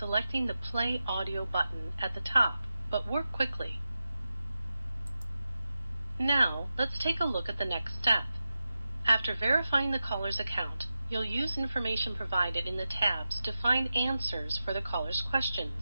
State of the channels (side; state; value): both; inverted; correlation -0.92